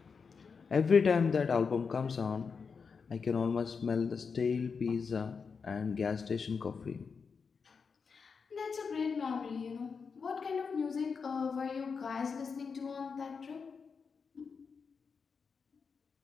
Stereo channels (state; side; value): quieter; right; 5.5 dB